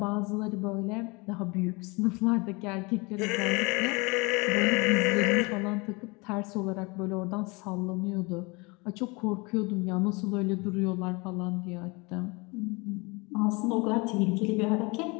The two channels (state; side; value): quieter; right; 27.2 dB